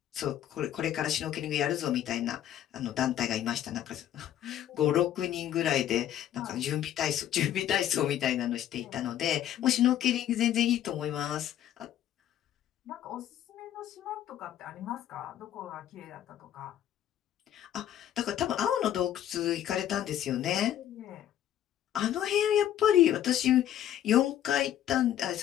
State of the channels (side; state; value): right; quieter; 11.3 dB